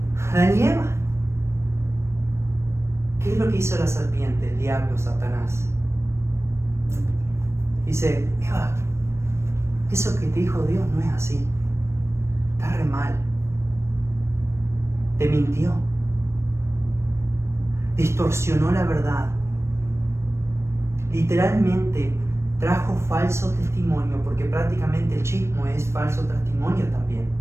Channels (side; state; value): left; late; 0.13 ms